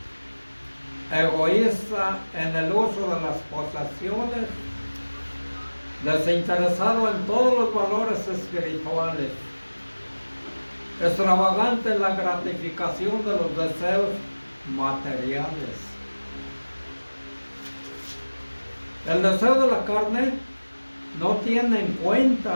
egoísta en el uso de las posesiones, desinteresado en todos los valores espirituales, extravagante en la gratificación de los deseos materiales. El deseo de la carne no tiene en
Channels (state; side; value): inverted; both; correlation -1.00